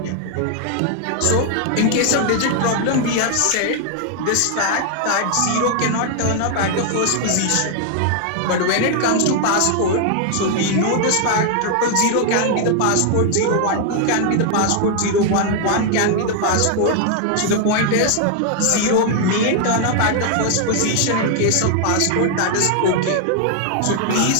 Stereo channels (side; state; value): both; different; correlation 0.00